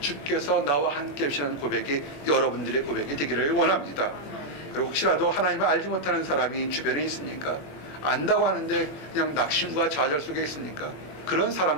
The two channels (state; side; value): late; right; 21 ms